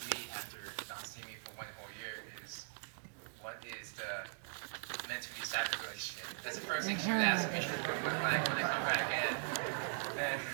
me after not seeing me for one whole year is, "What is the mentally disabled relationship?" That's the first thing she would ask me when I come back in. And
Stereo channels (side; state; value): left; silent; digital silence